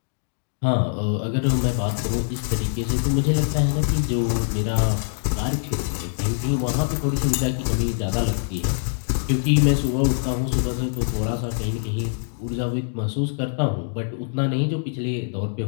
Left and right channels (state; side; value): silent; right; digital silence